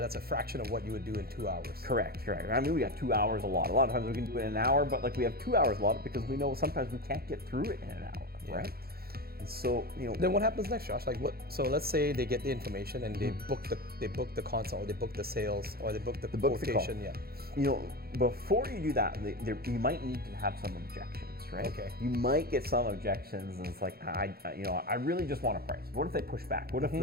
a fraction of what you would do in 2 hours. Correct. I mean, we got 2 hours a lot. A lot of times we can do it in an hour, but we have 2 hours a lot because we know sometimes we can't get through it in an hour, right? And so, Then what happens next, Josh? So let's say they get the information and they book the consult, or they book the sales, or they book the quotation. Before you do that, you might need to have some objections. Right? Okay. You might get some objections, and it's like, I really just want a price. What if they push back? What if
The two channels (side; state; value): left; late; 0.45 ms